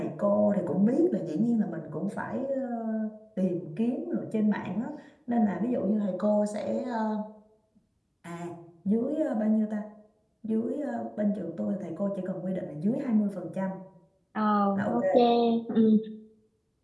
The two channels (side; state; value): both; identical; correlation 1.00